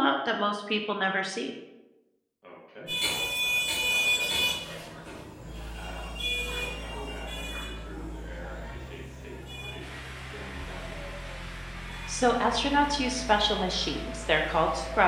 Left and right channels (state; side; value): identical; both; correlation 1.00